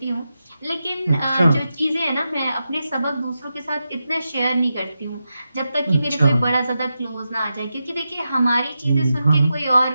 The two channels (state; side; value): inverted; both; correlation -0.89